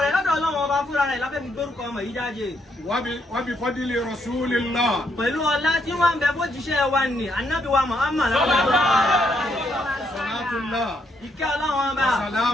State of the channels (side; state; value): both; normal; correlation 0.75